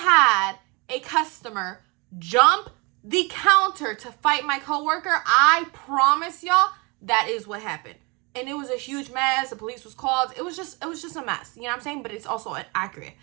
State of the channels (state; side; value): quieter; left; 28.7 dB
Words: had a customer jump the counter to fight my coworker, I promise y'all that is what happened. And it was a huge mess. The police was called. It was just a mess. You know what I'm saying? But it's also accurate.